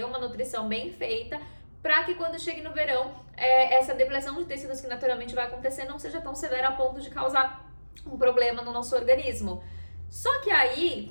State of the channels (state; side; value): inverted; both; correlation -1.00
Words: uma nutrição bem feita, para que quando chegue no verão, essa depressão de tecidos que naturalmente vai acontecer não seja tão severa a ponto de causar um problema no nosso organismo. Só que aí